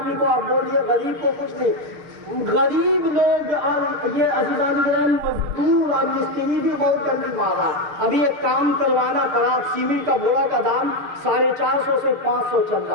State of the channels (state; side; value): late; left; 6.6 ms